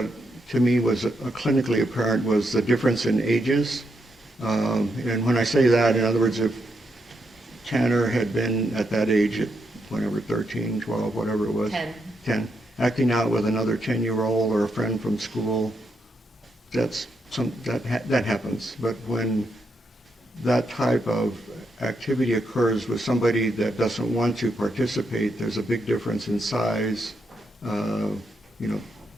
to me was clinically apparent was the difference in ages. And when I say that, in other words, if Tanner had been at that age at whenever, 13, 12, whatever it was. 10. Acting out with another 10-year-old or a friend from school, that happens. But when that type of activity occurs with somebody that doesn't want to participate, there's a big difference in size,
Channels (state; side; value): normal; both; correlation 0.81